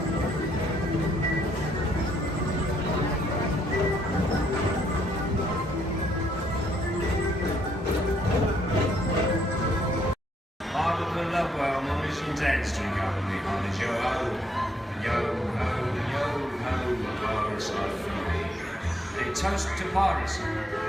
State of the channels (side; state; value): both; normal; correlation 0.71